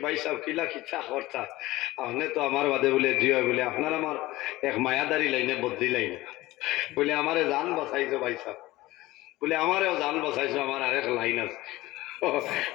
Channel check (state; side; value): quieter; right; 18.4 dB